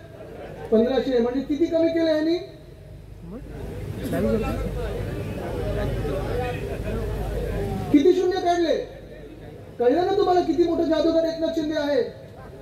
1500. म्हणजे किती कमी केले यांनी? किती शून्य काढले? कळलं ना तुम्हाला किती मोठं जादूगार एकनाथ शिंदे आहे.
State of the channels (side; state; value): both; identical; correlation 1.00